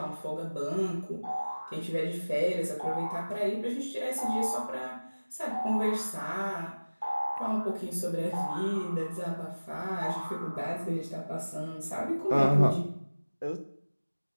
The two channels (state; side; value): inverted; both; correlation -1.00